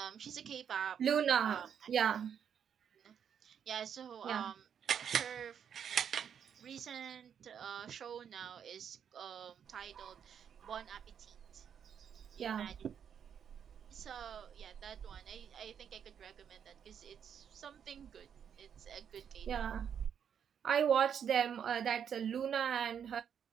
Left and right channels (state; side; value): quieter; left; 8.1 dB